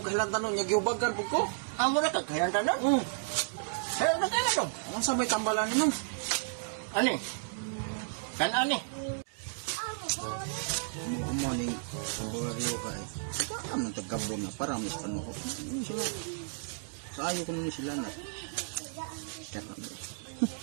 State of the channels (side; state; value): left; silent; digital silence